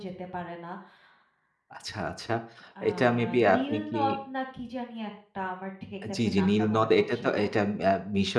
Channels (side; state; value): both; identical; correlation 1.00